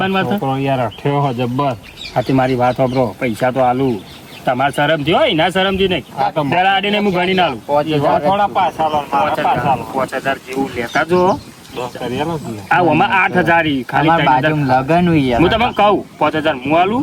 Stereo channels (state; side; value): identical; both; correlation 1.00